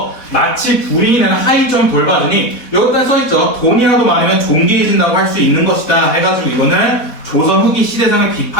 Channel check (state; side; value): late; right; 4.3 ms